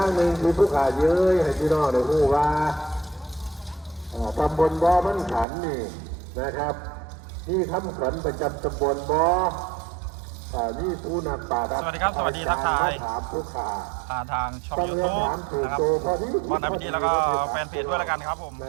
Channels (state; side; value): drops out; left; at 5.5 s